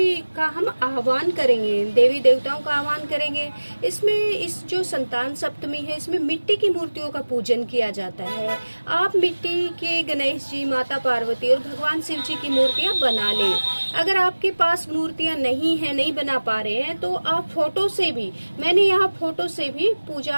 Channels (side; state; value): both; inverted; correlation -1.00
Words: का हम आह्वान करेंगे, देवी देवताओं का आह्वान करेंगे। इसमें इस जो संतान सप्तमी है, इसमें मिट्टी की मूर्तियों का पूजन किया जाता है। आप मिट्टी के गणेश जी, माता पार्वती और भगवान शिव जी की मूर्तियां बना लें। अगर आपके पास मूर्तियां नहीं है, नहीं बना पा रहे हैं, तो आप फोटो से भी, मैंने यहाँ फोटो से भी